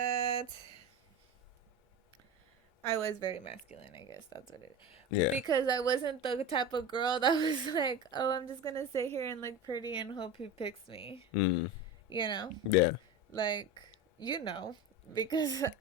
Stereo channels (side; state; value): both; normal; correlation 0.26